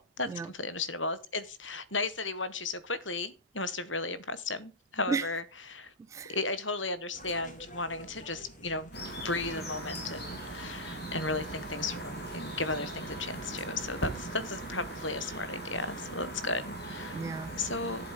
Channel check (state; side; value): normal; both; correlation -0.09